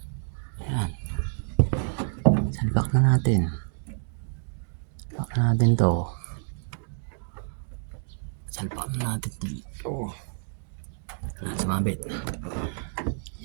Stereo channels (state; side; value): silent; left; digital silence